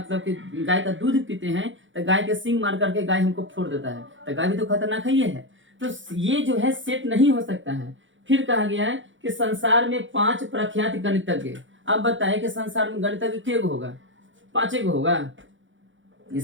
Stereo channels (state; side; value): late; left; 0.56 ms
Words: कि गाय का दूध पीते हैं, तो गाय के सींग मार करके गाय हमको फोड़ देता है, तो गाय भी तो खतरनाक ही है। तो ये जो है सेट नहीं हो सकता है। फिर कहा गया है कि संसार में 5 प्रख्यात गणितज्ञ। अब बताएं कि संसार में गणितज्ञ कितने होगा? 5 होगा।